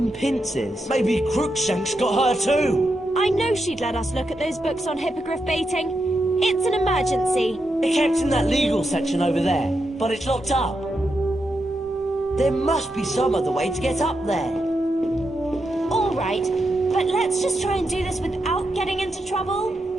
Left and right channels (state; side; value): normal; both; correlation 0.85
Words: Pince is. Maybe Crookshanks got her too. I know she'd let us look at those books on hippogriff baiting. It's an emergency. It kept in that legal section over there, but it's locked up. There must be some other way to get up there. All right, but let's just try and do this without getting into trouble.